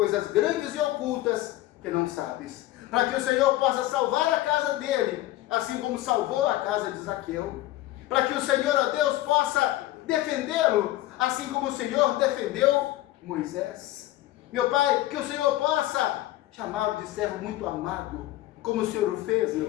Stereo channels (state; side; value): quieter; right; 15.9 dB